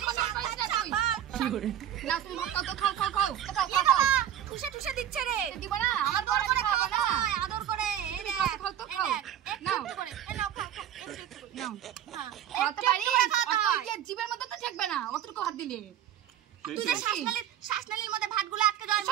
কথা কইছ না তুই। কি করে না তুমি ভাত খাও তো খাও খাও খাও। খাও খাও। ঠুসে ঠুসে দিচ্ছে রে। দিব না? আমার বর করে খাওয়া না। আদর করে। এই রে খাও তো খাও। একটু করে। এই নাও খাও খাও। একটু করে। নাও। হ্যাঁ। খাওয়াতে পারি। অত যে জীবের মধ্যে তো থাকবে না। অতটুকু হাত দিলে। তুই যে শ্বাসনালীর মধ্যে ভাতগুলো আটকে যায়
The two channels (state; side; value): quieter; left; 10.8 dB